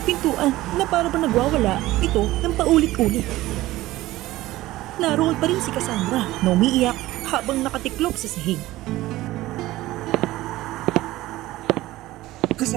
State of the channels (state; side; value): quieter; left; 16.9 dB